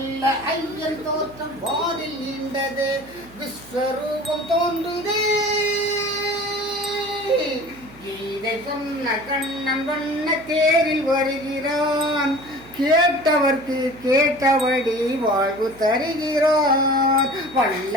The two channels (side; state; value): right; noise; hum, 23 dB below the sound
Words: ஐயன் தோற்றம் வாரில் நீண்டது. விஸ்வரூபம் தோன்றுதே. கீதை சொன்ன கண்ணன் வண்ண தேரில் வருகிறான். கேட்டவர்க்கு கேட்டபடி வாழ்வு தருகிறான்.